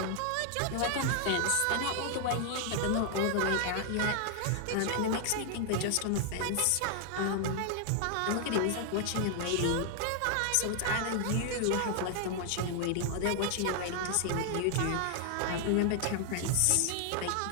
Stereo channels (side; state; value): both; different; correlation 0.00